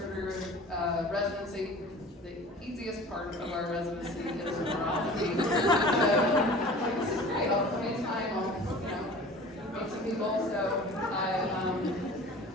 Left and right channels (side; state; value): both; normal; correlation 0.42